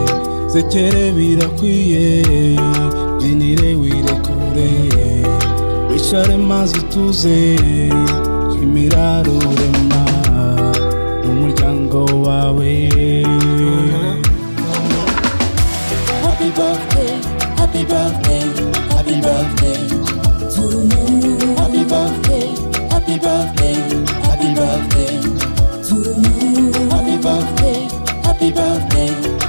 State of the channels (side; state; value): both; inverted; correlation -1.00